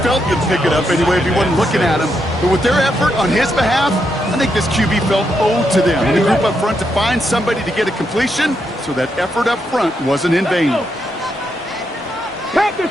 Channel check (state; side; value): normal; both; correlation 0.81